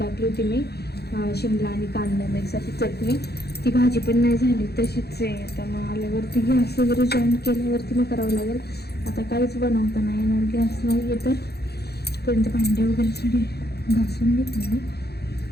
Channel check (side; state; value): right; late; 0.47 ms